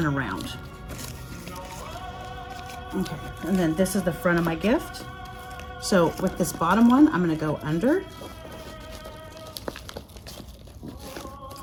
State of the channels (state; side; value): identical; both; correlation 1.00